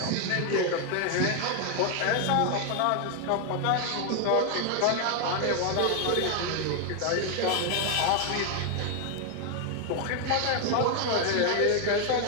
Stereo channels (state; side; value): different; both; correlation 0.01